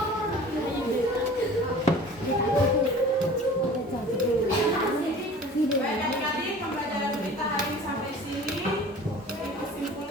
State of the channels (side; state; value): both; normal; correlation 0.43